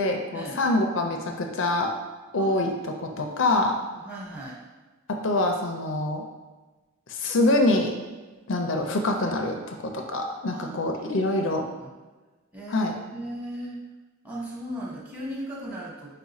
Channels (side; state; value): both; normal; correlation 0.18